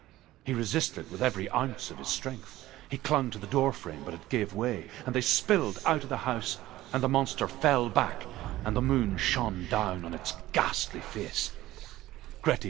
He resisted with every ounce of his strength. He clung to the doorframe, but it gave way, and they spilled out of the house, and the monster fell back, and the moon shone down on its ghastly face.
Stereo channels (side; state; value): left; quieter; 16.0 dB